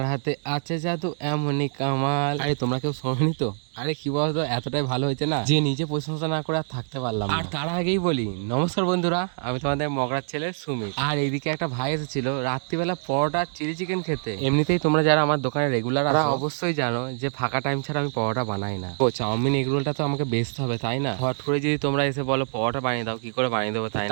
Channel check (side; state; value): left; silent; 62 dB below the other